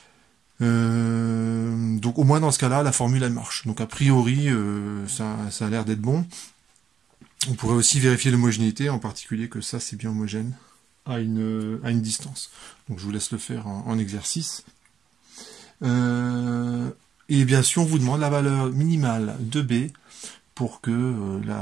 Donc au moins dans ce cas-là, la formule elle marche. Donc a priori, ça a l'air d'être bon. On pourrait aussi vérifier l'homogénéité, en particulier que ça c'est bien homogène à une distance. Donc je vous laisse le faire en exercice. Et bien sûr, on vous demande la valeur minimale de B pour que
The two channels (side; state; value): left; quieter; 8.0 dB